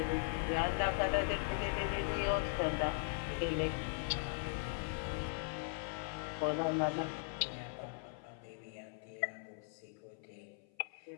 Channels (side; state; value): right; silent; 52 dB below the other